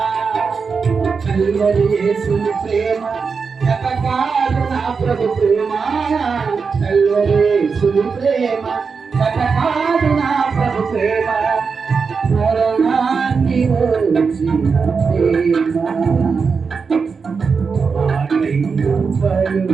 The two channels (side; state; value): left; quieter; 5.3 dB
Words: కల్వరి యేసుని ప్రేమ కటకాలు నా ప్రభు ప్రేమ కల్వరి యేసుని ప్రేమ కటకాలు నా ప్రభు ప్రేమ మరణాన్ని వచ్చిన ప్రేమ